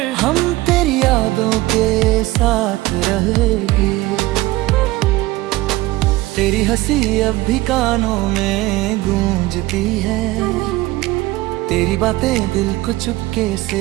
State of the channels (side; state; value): left; quieter; 18.7 dB